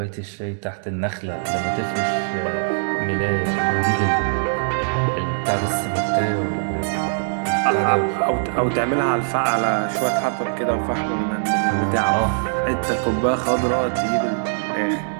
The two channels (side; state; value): left; silent; digital silence